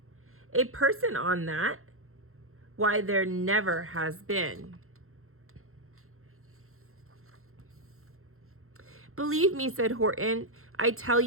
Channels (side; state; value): left; late; 0.62 ms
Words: A person on that? Why, there never has been." "Believe me," said Horton, "I tell